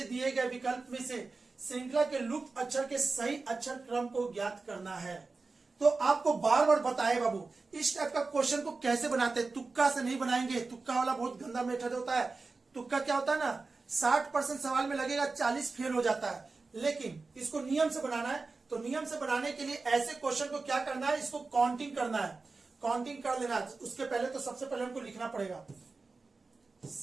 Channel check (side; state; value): left; quieter; 3.9 dB